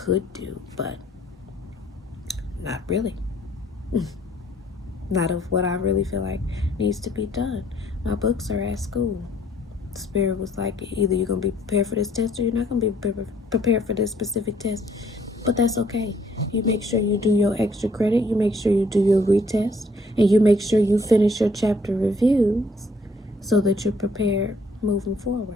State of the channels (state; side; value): normal; both; correlation 0.63